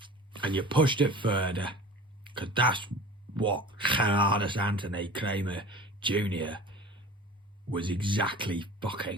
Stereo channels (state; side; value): normal; both; correlation 0.40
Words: and you pushed it further, because that's what Gerardus Anthony Kramer Jr. was exactly